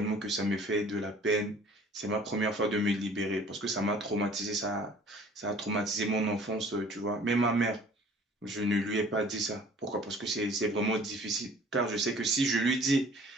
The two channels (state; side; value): normal; both; correlation 0.51